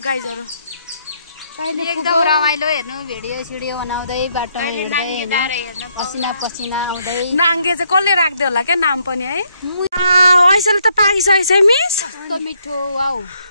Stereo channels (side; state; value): both; inverted; correlation -0.73